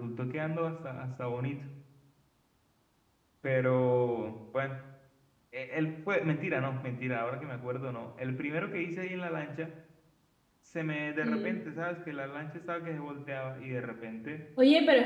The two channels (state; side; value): identical; both; correlation 1.00